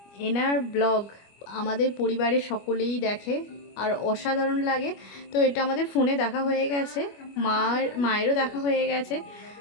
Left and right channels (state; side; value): late; right; 25 ms